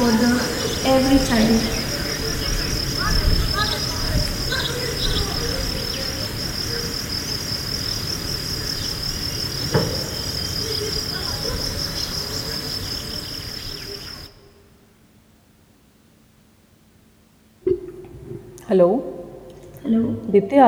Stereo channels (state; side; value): identical; both; correlation 1.00